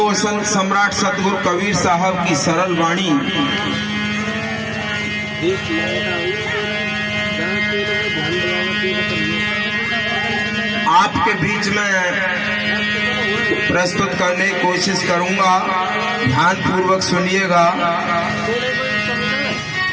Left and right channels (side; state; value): both; identical; correlation 1.00